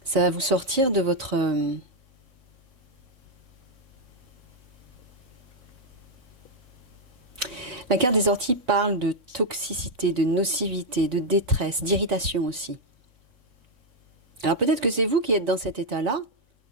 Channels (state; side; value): late; left; 3.6 ms